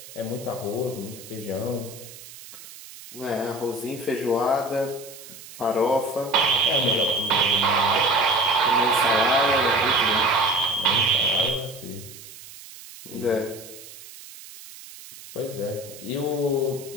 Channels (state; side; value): noise; right; hiss, 17 dB below the sound